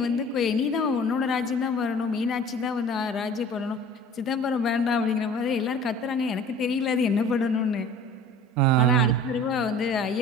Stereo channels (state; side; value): normal; both; correlation 0.45